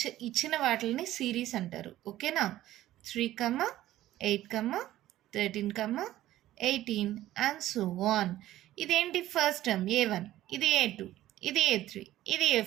ఇచ్చిన వాటిని సిరీస్ అంటారు. ఓకేనా? 3, 8, 13, 18 అండ్ సో ఆన్. ఇదేంటి? ఫస్ట్ టర్మ్ A1, ఇది A2, ఇది A3, ఇది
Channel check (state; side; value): quieter; left; 14.4 dB